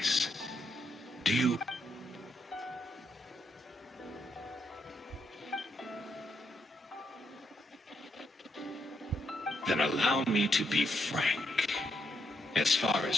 Do you... Then allow me to be frank. As far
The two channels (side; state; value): both; normal; correlation 0.79